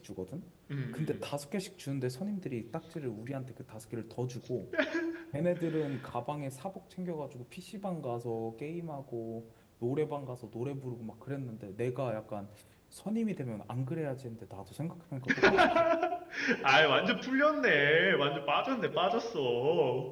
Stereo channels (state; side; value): identical; both; correlation 1.00